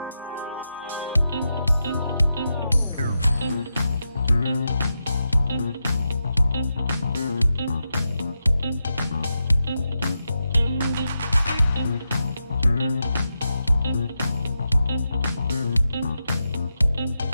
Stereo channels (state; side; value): inverted; both; correlation -0.88